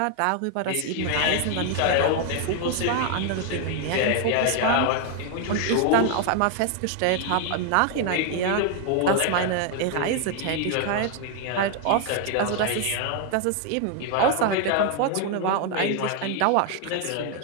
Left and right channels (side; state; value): both; different; correlation 0.00